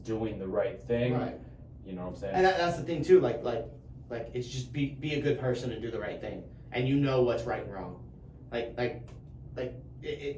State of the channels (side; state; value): both; identical; correlation 1.00